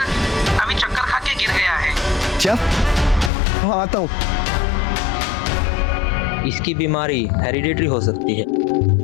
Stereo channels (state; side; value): drops out; right; at 3.3 s